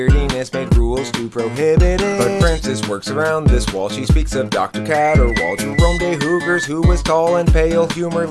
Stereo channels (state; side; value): identical; both; correlation 1.00